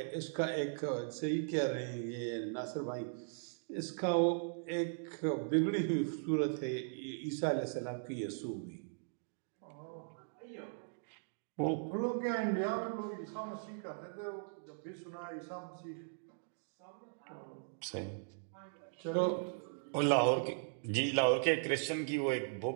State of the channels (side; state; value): left; silent; digital silence